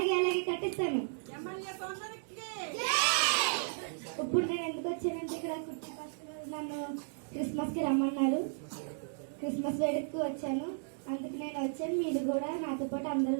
కట్టిస్తాను. ఇప్పుడు నేను ఎందుకు వచ్చానంటే, ఇక్కడ కుట్టి ఫస్ట్ నన్ను క్రిస్మస్ కి రమ్మన్నారు. క్రిస్మస్ వేడుకకు వచ్చాను. అందుకు నేను వచ్చాను. మీరు కూడా నాతో పాటు అందరూ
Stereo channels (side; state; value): left; silent; digital silence